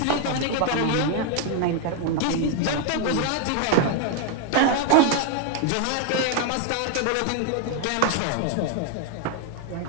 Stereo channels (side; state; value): both; different; correlation 0.01